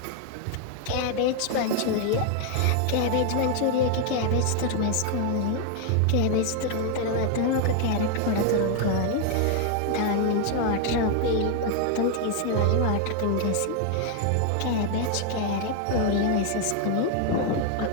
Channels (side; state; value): both; different; correlation 0.00